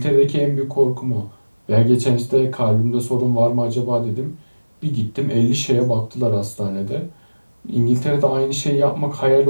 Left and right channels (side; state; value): both; inverted; correlation -1.00